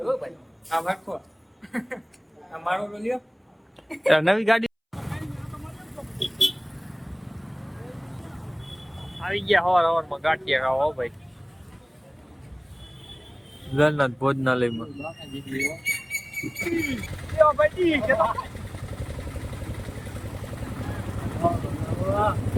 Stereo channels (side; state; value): both; identical; correlation 1.00